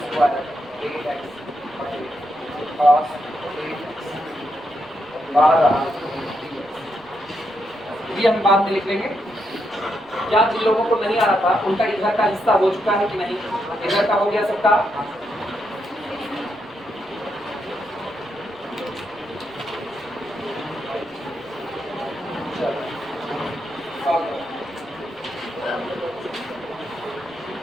square A X cos A X बाहर ये हम बाद में लिख लेंगे। क्या जिन लोगों को नहीं आ रहा था उनका इधर का हिस्सा हो चुका है कि नहीं, इधर का हो गया सबका?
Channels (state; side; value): noise; left; rumble, 30 dB below the sound